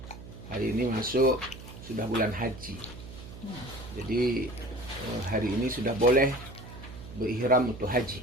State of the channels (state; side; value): noise; right; hum, 14 dB below the sound